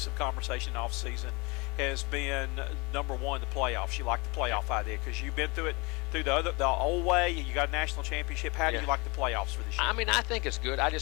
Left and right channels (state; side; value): quieter; right; 27.1 dB